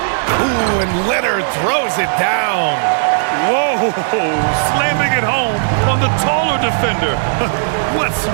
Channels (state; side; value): silent; left; digital silence